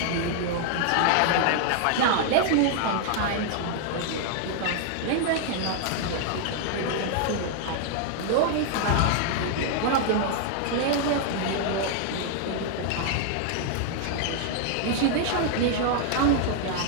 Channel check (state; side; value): different; both; correlation 0.00